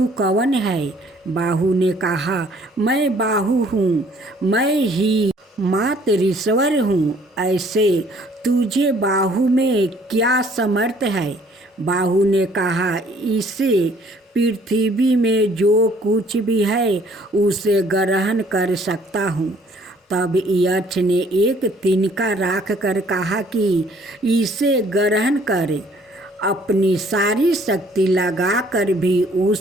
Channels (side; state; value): both; normal; correlation 0.59